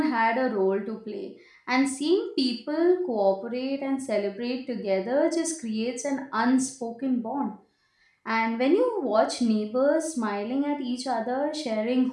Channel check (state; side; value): identical; both; correlation 1.00